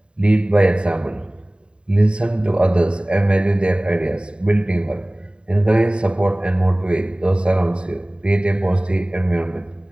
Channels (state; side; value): late; left; 0.052 ms